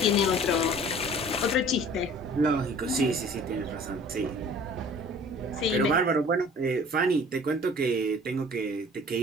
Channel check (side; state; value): both; normal; correlation 0.48